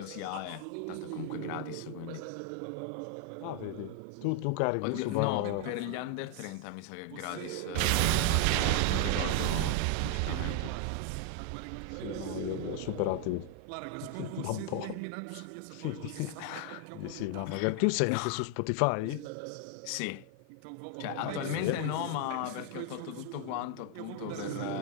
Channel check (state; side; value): different; both; correlation 0.00